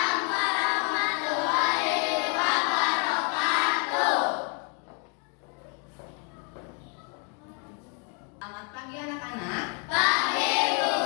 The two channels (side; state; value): right; quieter; 38.2 dB